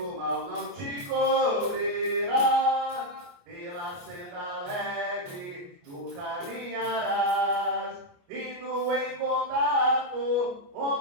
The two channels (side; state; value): left; late; 28 ms